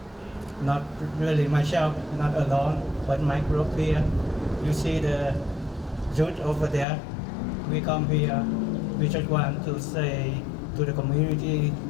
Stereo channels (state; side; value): drops out; right; at 6.9 s